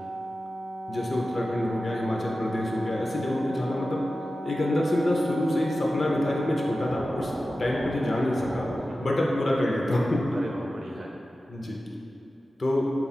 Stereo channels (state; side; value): normal; both; correlation 0.94